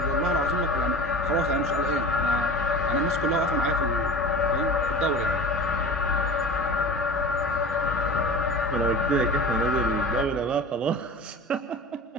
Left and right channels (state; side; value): normal; both; correlation 0.35